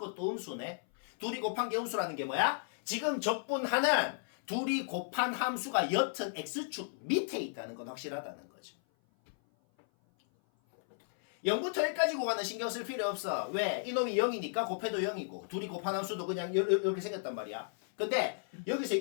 음수네. 둘이 곱한 게 음수라는 게 뭐야? 지금 적분하는 둘이 곱한 함수가 여튼 x축 밑에 있다는 건 확실하다는 거죠. 0부터 1까지 구간은 신경 쓸 필요 없어. 왜? 이놈이 0이니까 곱해도 0이고 둘이 곱한 함수도 그냥 이렇게 생겼단 말이야. 근데 여기서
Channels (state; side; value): silent; right; 55 dB below the other